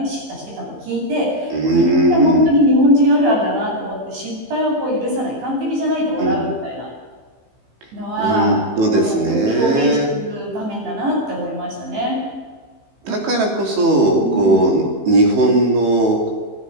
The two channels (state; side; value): late; left; 15 ms